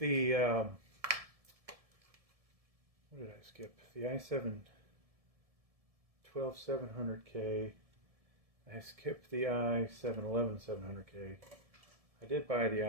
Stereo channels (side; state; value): left; late; 1.7 ms